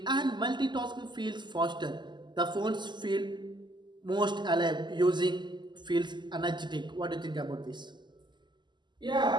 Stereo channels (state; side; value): late; left; 0.21 ms